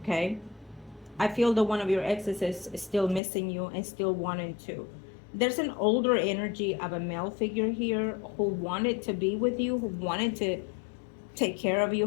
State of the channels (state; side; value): drops out; right; at 3.2 s